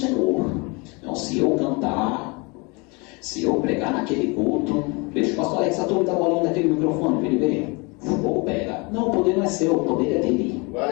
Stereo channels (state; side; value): quieter; right; 29.0 dB